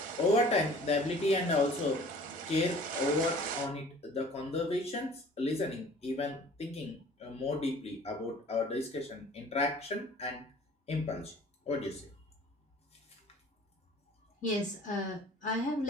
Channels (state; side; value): normal; both; correlation 0.49